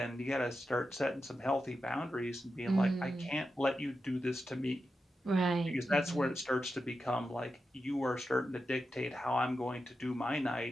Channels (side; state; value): both; normal; correlation 0.89